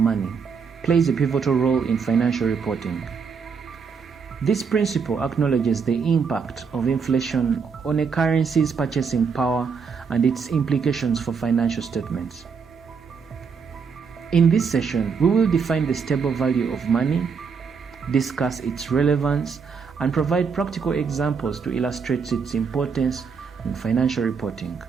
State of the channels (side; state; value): left; quieter; 5.8 dB